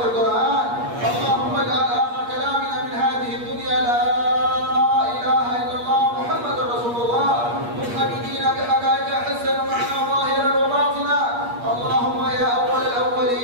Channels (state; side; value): late; left; 8.5 ms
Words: القرآن. اللهم اجعل آخر كلامنا من هذه الدنيا لا إله إلا الله محمد رسول الله، متحققين بحقائق حسن معنا ظاهرا وباطنا. اللهم يا أول